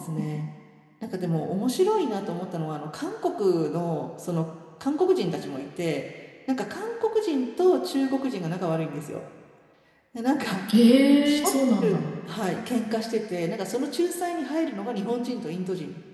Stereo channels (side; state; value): both; identical; correlation 1.00